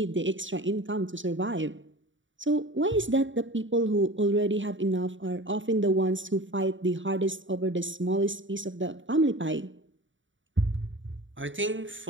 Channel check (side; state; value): left; late; 0.55 ms